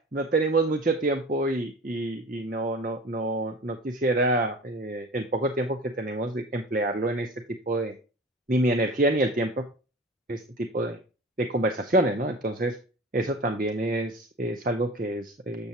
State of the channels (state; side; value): normal; both; correlation 0.37